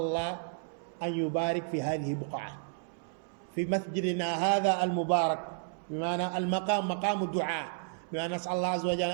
الله أن يبارك في هذه البقعة في مسجدنا هذا المبارك بمعنى المقام مقام الدعاء بمعنى نسأل الله عز وجل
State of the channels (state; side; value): silent; left; 56 dB below the other